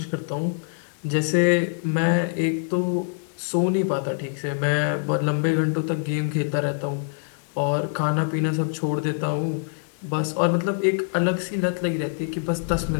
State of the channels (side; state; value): right; silent; 62 dB below the other